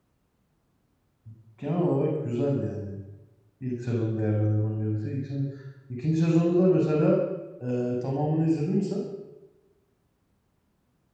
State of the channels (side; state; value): both; identical; correlation 1.00